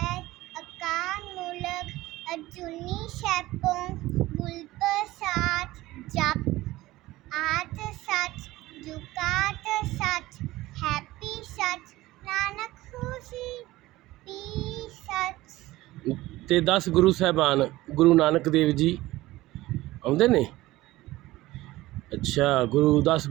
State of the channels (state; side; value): quieter; left; 17.8 dB